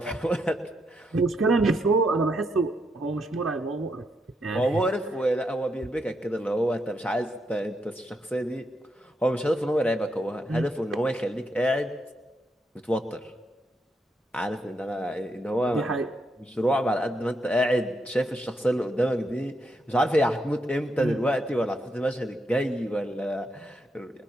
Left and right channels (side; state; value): both; normal; correlation 0.79